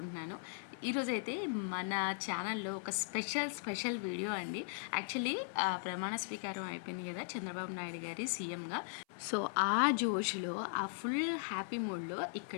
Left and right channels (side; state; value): right; silent; 52 dB below the other